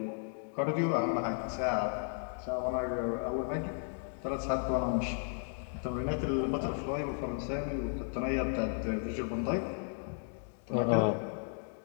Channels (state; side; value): silent; right; 55 dB below the other